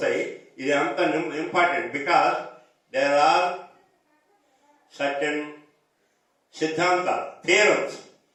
ఇది అంత important because there are certain siddhanta, theorems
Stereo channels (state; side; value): identical; both; correlation 1.00